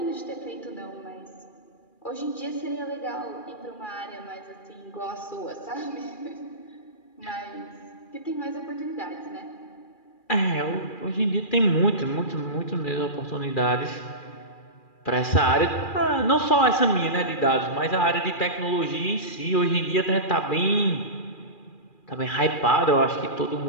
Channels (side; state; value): right; late; 2.4 ms